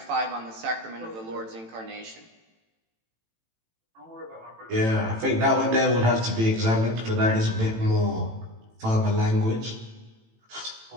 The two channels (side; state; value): left; late; 18 ms